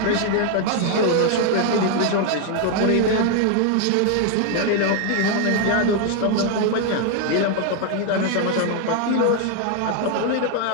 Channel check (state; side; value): different; both; correlation 0.01